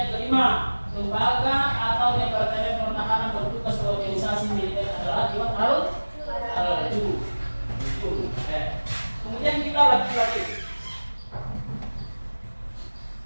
kelima, lembaga atau departemen pertahanan bertugas organisasi militer adalah Diwan Al-Jum. Kemudian kita lagi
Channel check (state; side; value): inverted; both; correlation -1.00